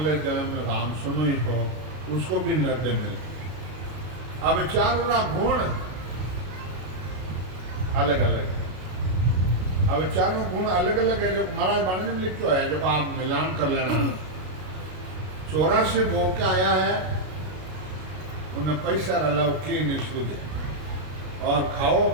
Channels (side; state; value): left; late; 32 ms